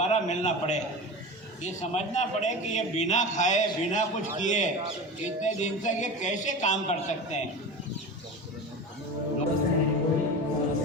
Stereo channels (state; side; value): normal; both; correlation 0.29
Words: मिलना पड़े, ये समझना पड़े कि ये बिना खाए बिना कुछ किए इतने दिन तक ये कैसे काम कर सकते हैं।